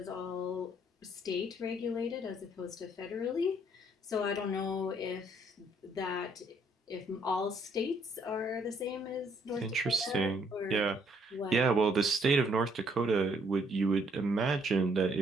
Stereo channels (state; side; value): normal; both; correlation 0.67